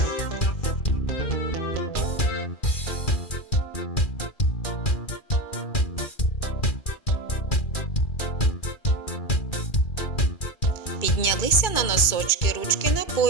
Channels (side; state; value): right; late; 2.4 ms